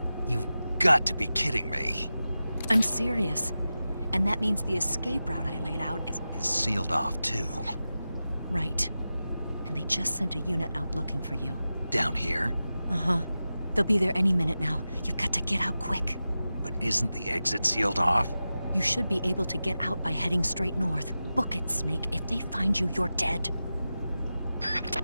You've got to be kidding me. I'm serious. And that means the escape route I laid out is sealed off, too. Right. And they just sent a unit out looking for you. Down here? Uh-huh. They'll be there any minute now. You've got to get out quick. But isn't the exit sealed off? You should be able to get out by heading straight north. Book it, Snake. If they find you, you're dead.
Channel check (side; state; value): both; inverted; correlation -0.94